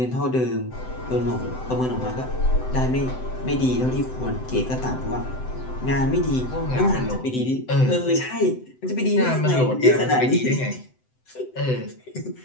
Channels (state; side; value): late; right; 7.9 ms